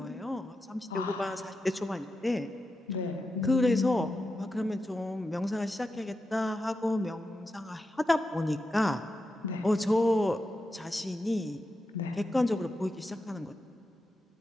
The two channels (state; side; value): normal; both; correlation 0.89